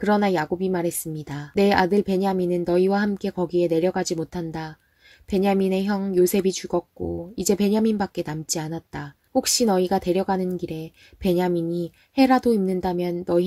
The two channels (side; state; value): both; identical; correlation 1.00